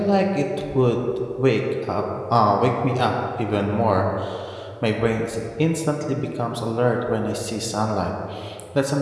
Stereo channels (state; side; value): identical; both; correlation 1.00